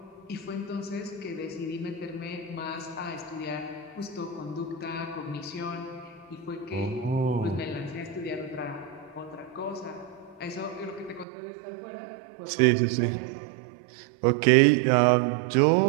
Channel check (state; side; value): drops out; left; at 11.2 s